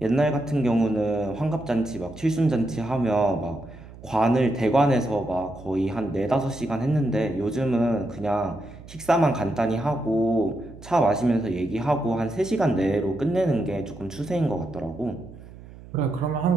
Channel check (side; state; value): right; noise; hum, 18 dB below the sound